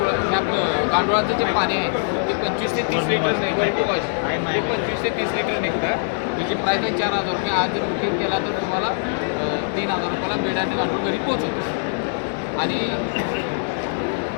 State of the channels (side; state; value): right; silent; 64 dB below the other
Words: आपलं गांडुळाचं जे पाणी आहे ते 25 ते 30 लिटर निघतं. ते 25 ते 30 लिटर निघतं. त्याची प्राईस आहे 4,000 रुपये. आज जर बुकिंग केला तर तुम्हाला 3,000 रुपयाला बेड आणि गांडूळ घरी पोहोचवतो. आणि